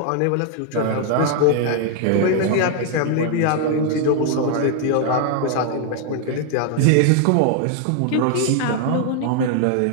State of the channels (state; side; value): different; both; correlation 0.00